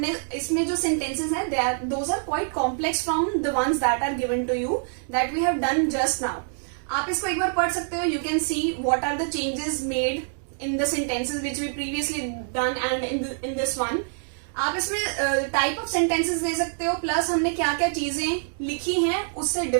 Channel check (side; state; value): left; silent; digital silence